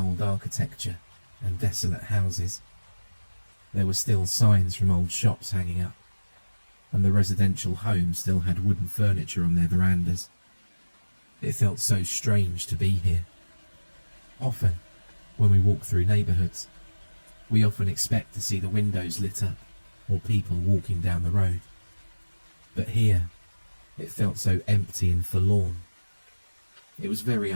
architecture and desolate houses. There were still signs from old shops hanging up, and the residential homes still had wooden furniture on their verandas. It felt so strange to be here. Often, when we walk through neighbourhoods, we often expect to see the windows lit up or people walking down the road. But here, it felt so empty and forlorn. It was very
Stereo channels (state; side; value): inverted; both; correlation -1.00